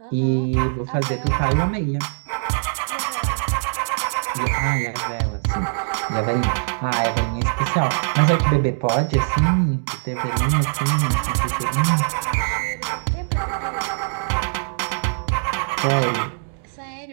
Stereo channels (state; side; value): silent; left; digital silence